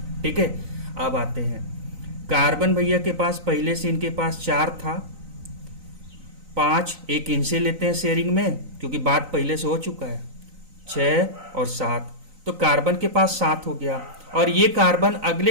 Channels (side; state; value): left; late; 3.9 ms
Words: ठीक है, अब आते हैं कार्बन भैया के पास पहले से इनके पास 4 था, 5 एक इनसे लेते हैं शेयरिंग में क्योंकि बात पहले से हो चुका है, 6 और 7। तो कार्बन के पास 7 हो गया, और ये कार्बन